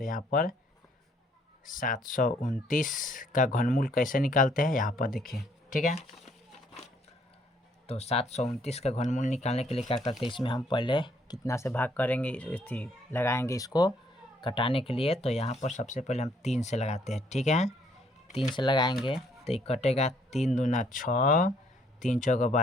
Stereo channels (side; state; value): both; normal; correlation 0.67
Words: यहाँ पर 729 का घनमूल कैसे निकालते हैं, यहाँ पर देखिए। ठीक है, तो 729 का घनमूल निकालने के लिए क्या करते हैं, इसमें हम पहले कितना से भाग करेंगे, लगाएंगे इसको कटाने के लिए। तो यहाँ पर सबसे पहले हम 3 से लगाते हैं। ठीक है, 3 से लगाएंगे तो ये कटेगा, 3 दूना 6, 3 चौका